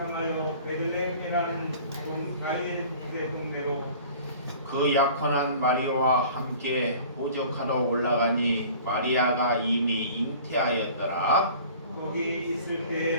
베들레헴이라는 다윗의 동네로 그 약혼한 마리아와 함께 호적하러 올라가니 마리아가 이미 잉태하였더라. 거기 있을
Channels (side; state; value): both; inverted; correlation -0.46